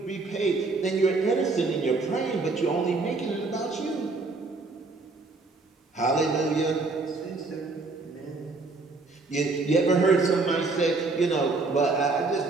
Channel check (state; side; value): quieter; left; 3.7 dB